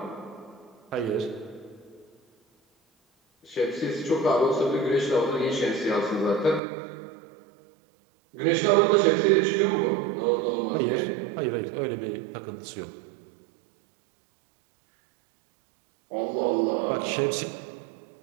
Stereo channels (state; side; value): drops out; left; at 6.6 s